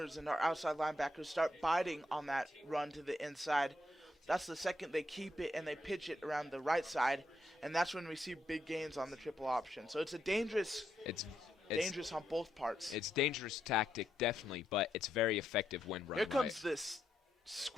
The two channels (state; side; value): normal; both; correlation 0.80